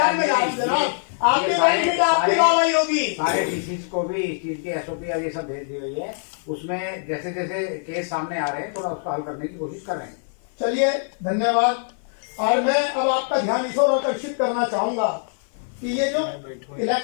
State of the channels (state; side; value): silent; right; 55 dB below the other